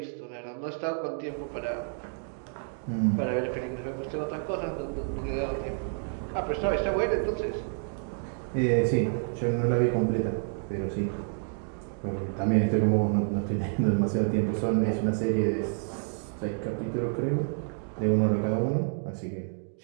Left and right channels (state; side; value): silent; left; 58 dB below the other